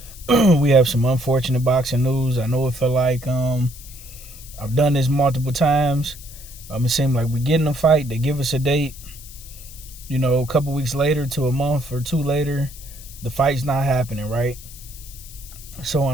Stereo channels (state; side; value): noise; left; hiss, 17 dB below the sound